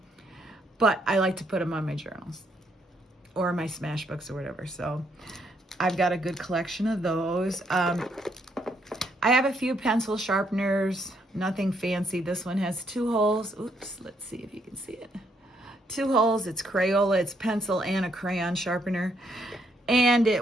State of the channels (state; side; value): normal; both; correlation 0.73